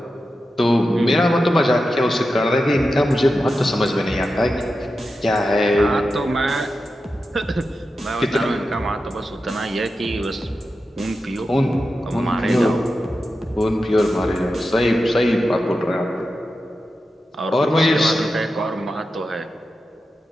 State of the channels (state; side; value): normal; both; correlation 0.91